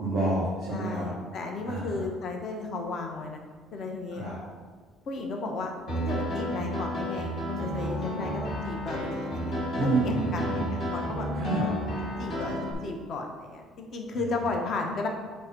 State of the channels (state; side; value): normal; both; correlation 0.55